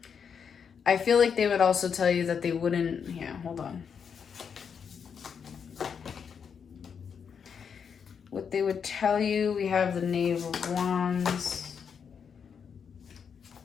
I feel like they would also tell you that they wouldn't... Yeah, hold on. What they would tell you, we have the Knave of Wands.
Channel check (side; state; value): right; quieter; 6.8 dB